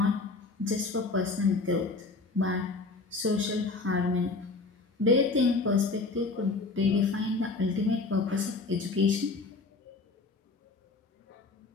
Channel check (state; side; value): quieter; right; 3.8 dB